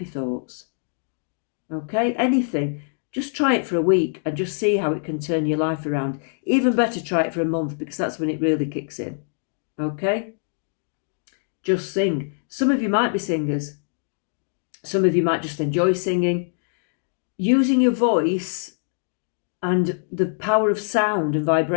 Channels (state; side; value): silent; right; digital silence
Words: thoughts. Okay, anything. Just try it for a week and just see how it can turn your life around. Even better, try it for a month, because that's when it really kicks in. Okay? Just sing. Some of you might be singers. Some of you might just enjoy singing. Using your voice and the power of sound and